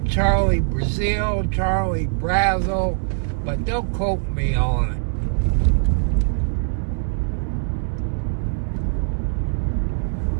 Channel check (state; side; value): silent; left; 61 dB below the other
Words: Charlie Brazil, but don't quote me on it.